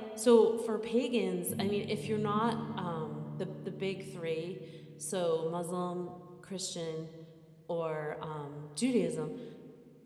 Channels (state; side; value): identical; both; correlation 1.00